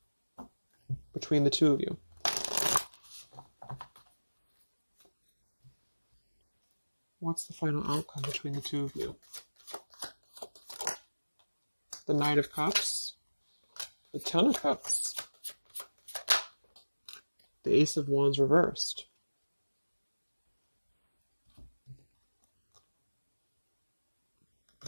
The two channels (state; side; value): inverted; both; correlation -1.00